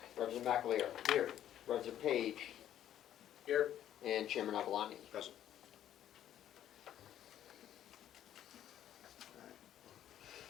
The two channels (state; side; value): quieter; right; 11.3 dB